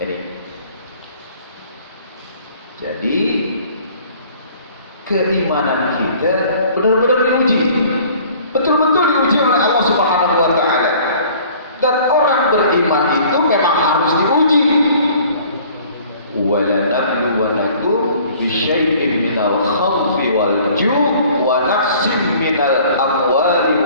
Jadi keimanan kita benar-benar diuji, betul-betul diuji oleh Allah Subhanahu wa Ta'ala. Dan orang beriman itu memang harus diuji. وَلَنَبْلُوَنَكُمْ بِشَيْءٍ مِنَ الْخَوْفِ وَالْجُوعِ وَنَقْصٍ مِنَ الْأَمْوَالِ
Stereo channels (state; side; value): inverted; both; correlation -0.52